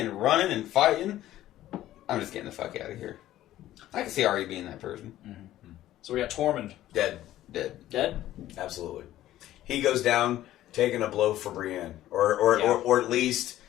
fighting. I'm just getting the fuck out of here. I can see Arya being that person. So we got Tormund Dead. dead. Absolutely. He goes down taking a blow for Brienne, or at least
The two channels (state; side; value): quieter; right; 13.9 dB